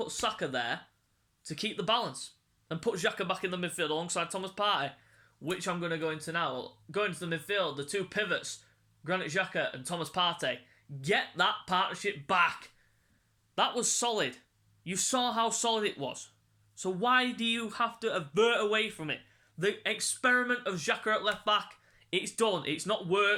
Saka there to keep the balance. And put Xhaka back in the midfield alongside Thomas Partey, which I'm going to go into now. Going to the midfield, the 2 pivots, Granit Xhaka and Thomas Partey. Get that partnership back. That was solid. You saw how solid it was. So why do you have to avert away from it? The experiment of Xhaka at left back, it's done. It's not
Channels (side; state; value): both; identical; correlation 1.00